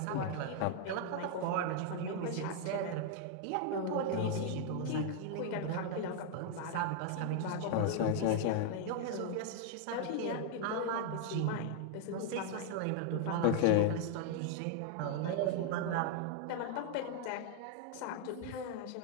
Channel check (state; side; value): different; both; correlation 0.00